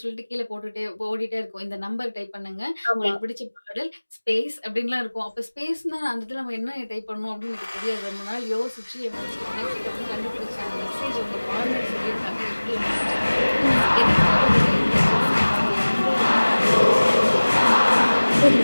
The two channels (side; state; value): both; inverted; correlation -1.00